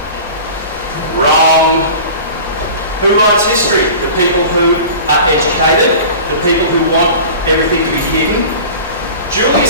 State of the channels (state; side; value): inverted; both; correlation -0.38